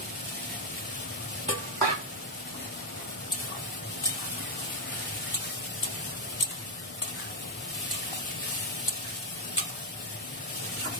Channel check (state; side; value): normal; both; correlation 0.03